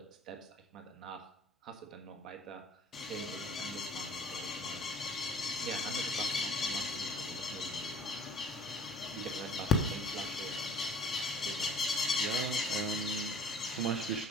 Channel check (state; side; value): normal; both; correlation 0.51